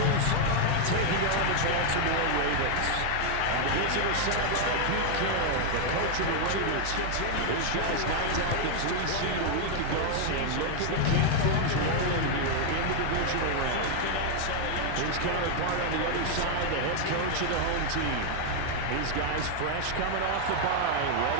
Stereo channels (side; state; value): both; different; correlation 0.00